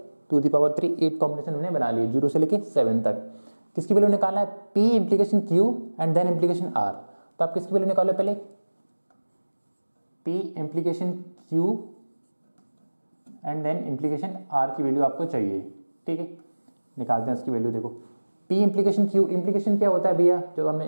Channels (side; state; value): both; inverted; correlation -1.00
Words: 2⁻3 8 कॉम्बिनेशन हमने बना लिए 0 से लेके 7 तक। किसकी वैल्यू निकालना है? P implication Q and then implication R। तो आप किसकी वैल्यू निकालो पहले? P implication Q and then implication R की वैल्यू आपको चाहिए, ठीक है। निकालते हैं इसकी वैल्यू। देखो P इम्प्लीकेशन Q, इम्प्लीकेशन क्या होता है भैया? जो हमने